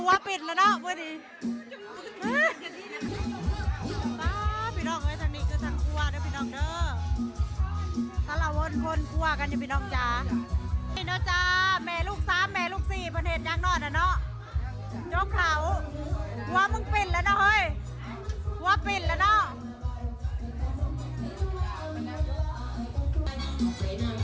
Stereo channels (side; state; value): both; identical; correlation 1.00